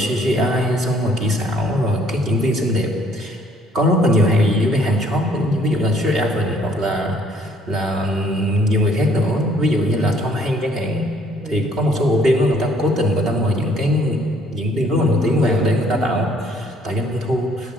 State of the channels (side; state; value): both; normal; correlation 0.62